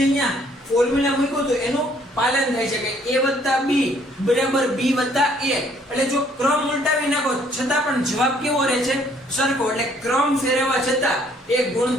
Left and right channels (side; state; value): both; normal; correlation 0.63